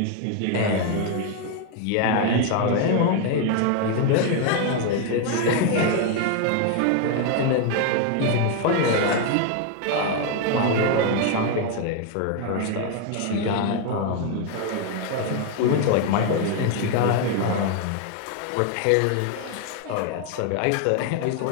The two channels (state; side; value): different; both; correlation 0.01